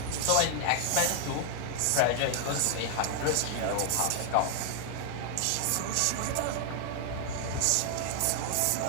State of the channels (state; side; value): different; both; correlation 0.00